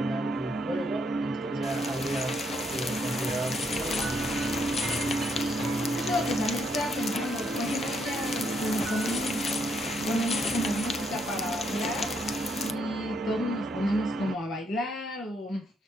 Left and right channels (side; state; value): both; normal; correlation 0.74